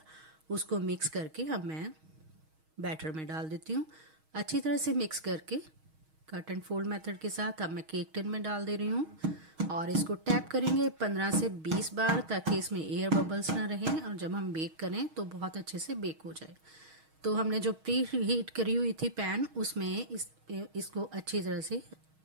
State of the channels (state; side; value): late; left; 6.3 ms